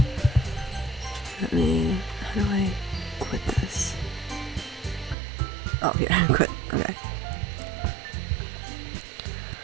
How do I quit this? Oh, here, quit. Okay.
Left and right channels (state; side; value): drops out; left; at 5.2 s